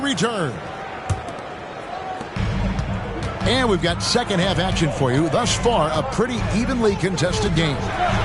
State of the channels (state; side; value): identical; both; correlation 1.00